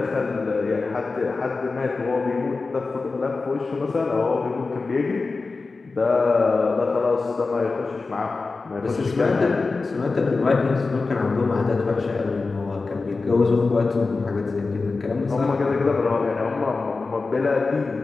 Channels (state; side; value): quieter; right; 4.0 dB